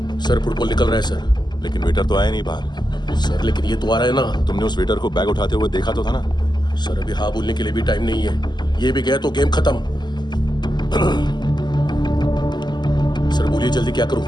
सर फुटबॉल निकल रहा है सर। लेकिन वेटर तो आया नहीं बाहर। सर लेकिन ये तो आ रहा है ना। तुमने उस वेटर को बैग उठाते हुए देखा तो था ना? सर अभी हाँ बोलने के लिए भी टाइम नहीं है। ये भी गया तो गेम खत्म। सर बोलिए जल्दी क्या करूं?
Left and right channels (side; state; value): right; late; 0.21 ms